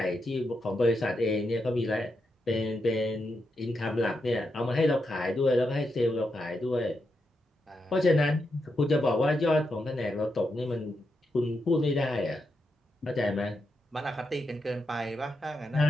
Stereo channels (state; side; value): normal; both; correlation 0.84